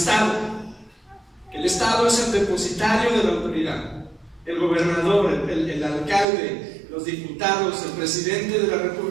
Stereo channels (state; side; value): drops out; left; at 6.2 s